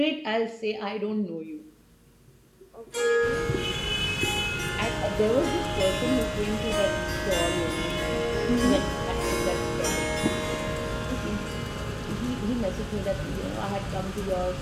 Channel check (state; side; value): identical; both; correlation 1.00